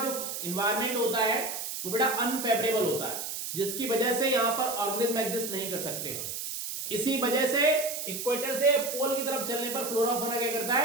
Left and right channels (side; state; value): right; noise; hiss, 5 dB below the sound